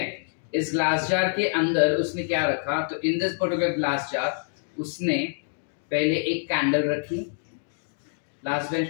इस ग्लास जार के अंदर उसने क्या रखा, तो इन दिस पर्टिकुलर ग्लास जार उसने पहले एक कैंडल रखी. लास्ट बेंच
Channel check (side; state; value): right; silent; 61 dB below the other